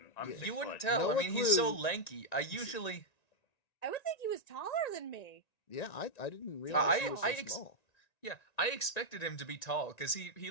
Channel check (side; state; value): right; late; 1.9 ms